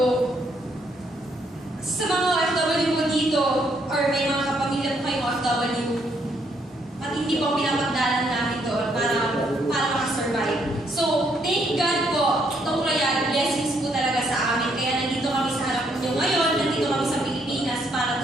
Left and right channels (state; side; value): normal; both; correlation 0.72